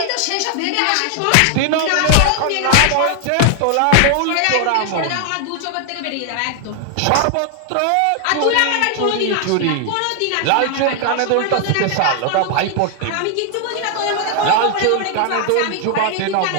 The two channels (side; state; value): both; different; correlation 0.00